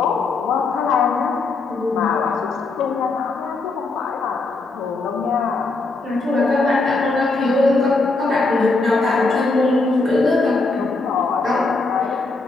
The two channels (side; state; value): right; quieter; 3.6 dB